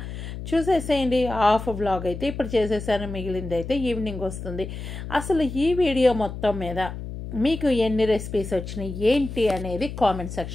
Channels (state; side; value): noise; left; hum, 8 dB below the sound